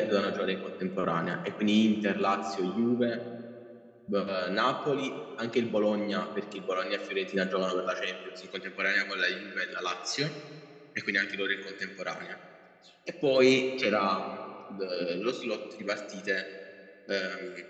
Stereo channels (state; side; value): identical; both; correlation 1.00